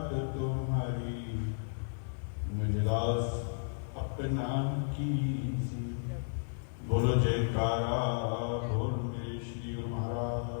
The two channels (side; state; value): right; silent; digital silence